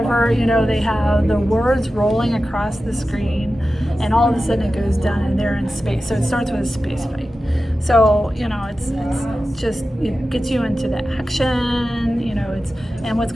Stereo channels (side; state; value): both; normal; correlation 0.94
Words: they have the words rolling across the screen and all of a sudden it goes down and they're in space. So it starts with a space fight. So, it's just, it gets you into the action, and what's